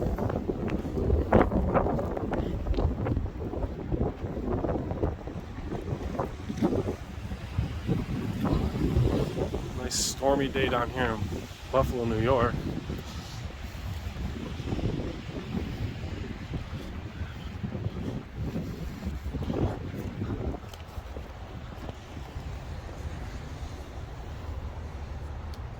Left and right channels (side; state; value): both; identical; correlation 1.00